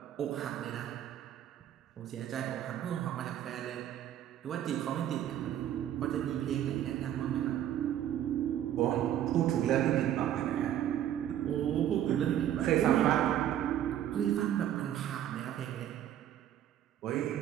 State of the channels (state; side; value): quieter; left; 11.2 dB